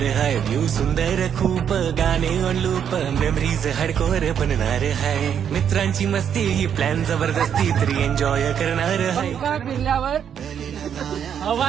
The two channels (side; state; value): left; quieter; 8.4 dB